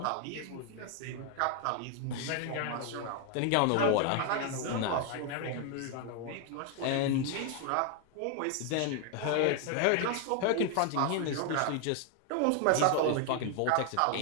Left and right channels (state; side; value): different; both; correlation 0.01